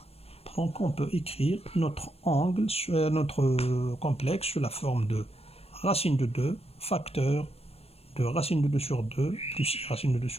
Donc on peut écrire notre angle, notre complexe sous la forme de racine de 2, facteur de racine de 2 sur 2 plus i racine de 2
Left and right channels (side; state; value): right; late; 0.29 ms